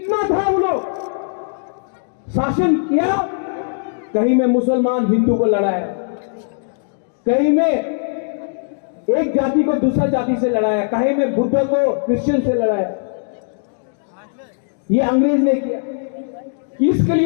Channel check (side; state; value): right; silent; digital silence